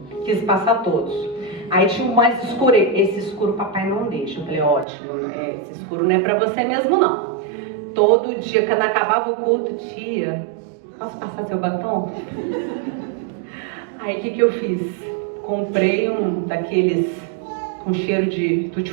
Quis passar todos. Aí tinha um mais escuro. Esse escuro papai não deixa. Eu falei, ótimo. Esse escuro não é para você mesmo, não. Todo dia, quando acabava o culto, tia, posso passar seu batom? Aí o que eu fiz? Comprei um daqueles com cheiro de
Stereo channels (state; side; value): drops out; left; at 4.9 s